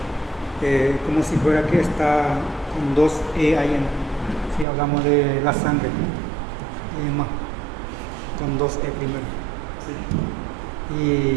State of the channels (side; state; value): left; drops out; at 4.7 s